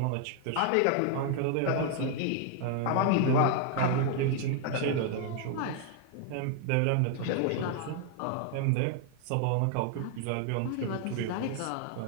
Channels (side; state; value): both; different; correlation 0.00